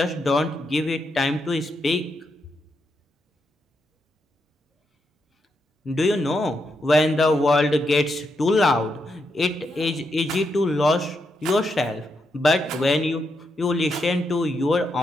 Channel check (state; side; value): normal; both; correlation 0.82